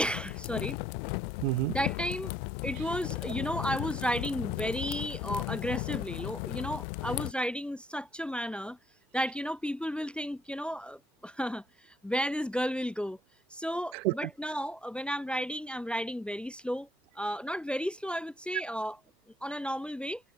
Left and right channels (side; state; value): both; normal; correlation 0.66